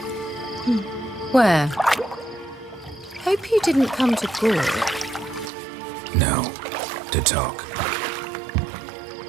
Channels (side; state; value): left; drops out; at 5.5 s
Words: Where? Hope you didn't come to Gore. No. To talk.